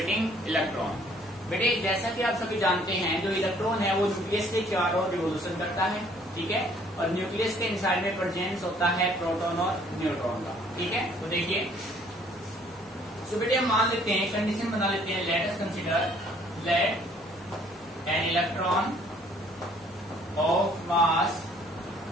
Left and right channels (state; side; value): normal; both; correlation 0.60